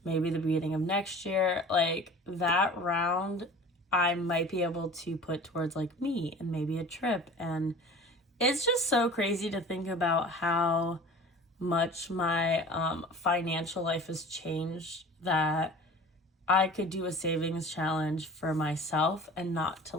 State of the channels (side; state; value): both; normal; correlation 0.41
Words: maybe the beginning of next year, like that round I might be able to put towards like me and maybe a trip. And it's just so crazy to think about how much my financial life has changed, that I could do a savings challenge for myself and not to